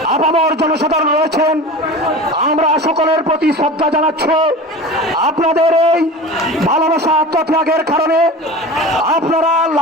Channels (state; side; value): normal; both; correlation 0.34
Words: আপামর জনসাধারণ রয়েছেন। আমরা সকলের প্রতি শ্রদ্ধা জানাচ্ছি। আপনাদের এই ভালোবাসা আত্মত্যাগের কারণে আপনারা